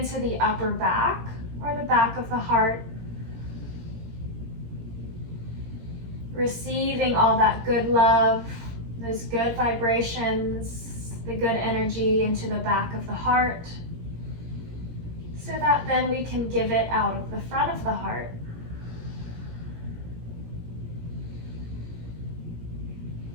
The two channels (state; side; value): late; left; 17 ms